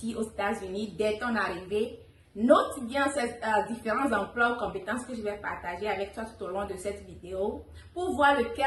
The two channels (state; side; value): identical; both; correlation 1.00